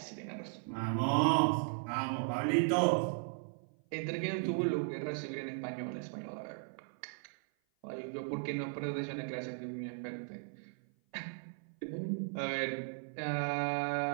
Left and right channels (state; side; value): silent; left; 53 dB below the other